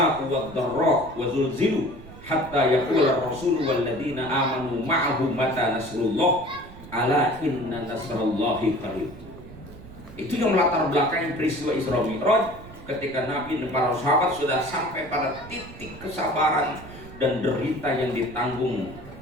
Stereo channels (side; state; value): right; noise; rumble, 17 dB below the sound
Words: wad-dharra wa zulzilu hatta yaqula ar-rasul wal ladzina amanu ma'ahu mata nasrullah ala inna nasrallahi qarib. Itu yang melatar belakangi peristiwa Isra Mi'raj. Ketika Nabi dan para sahabat sudah sampai pada titik kesabaran dan derita yang ditanggung